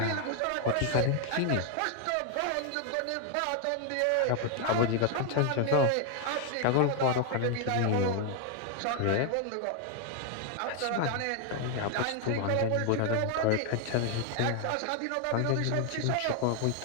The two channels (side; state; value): both; different; correlation 0.00